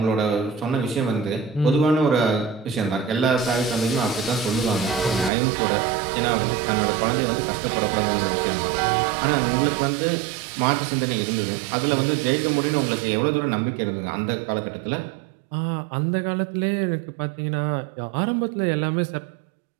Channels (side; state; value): left; drops out; at 5.3 s